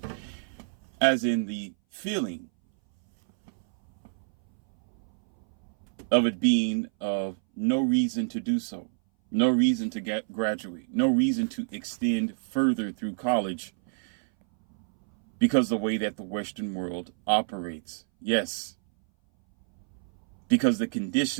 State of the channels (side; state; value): left; silent; 59 dB below the other